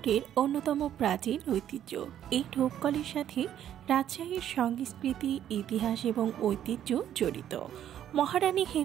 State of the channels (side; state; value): left; quieter; 10.6 dB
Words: অন্যতম প্রাচীন ঐতিহ্য। এই ঢোপকলের সাথে রাজশাহীর সংস্কৃতি, ইতিহাস এবং ঐতিহ্য জড়িত। মহারানী